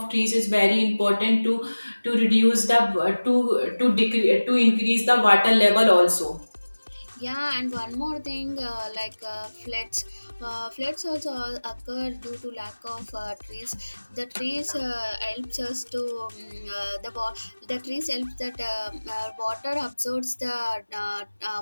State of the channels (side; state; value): both; inverted; correlation -1.00